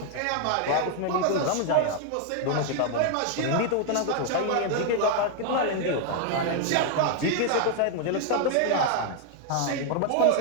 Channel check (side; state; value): both; different; correlation 0.00